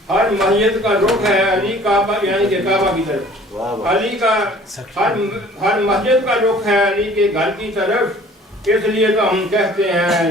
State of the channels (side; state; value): both; normal; correlation 0.51